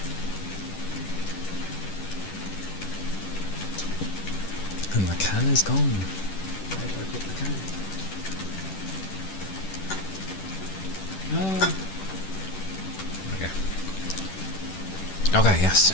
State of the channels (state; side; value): late; right; 10 ms